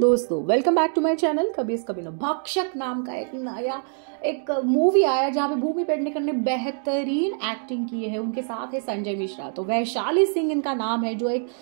welcome back to my channel कभी इस कभी ना। भक्षक नाम का एक नया मूवी आया जहाँ पे भूमि पेडनेकर ने बेहतरीन एक्टिंग की है। उनके साथ है संजय मिश्रा। तो वैशाली सिंह इनका नाम है, जो एक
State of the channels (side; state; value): left; silent; 55 dB below the other